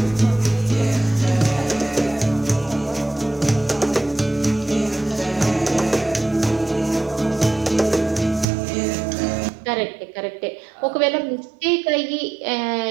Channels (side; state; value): left; drops out; at 8.5 s